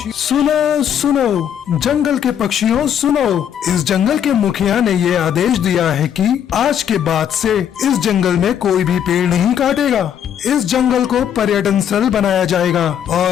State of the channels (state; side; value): quieter; right; 9.2 dB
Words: सुनो सुनो जंगल के पक्षियों सुनो, इस जंगल के मुखिया ने ये आदेश दिया है कि आज के बाद से इस जंगल में कोई भी पेड़ नहीं काटेगा। इस जंगल को पर्यटन स्थल बनाया जाएगा